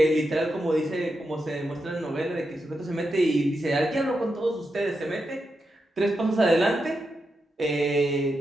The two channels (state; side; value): normal; both; correlation 0.86